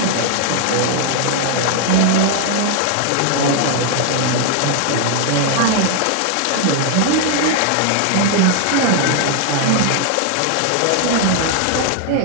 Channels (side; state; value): both; different; correlation 0.00